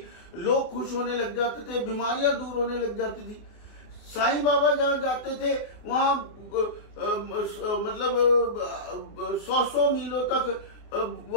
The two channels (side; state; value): right; late; 24 ms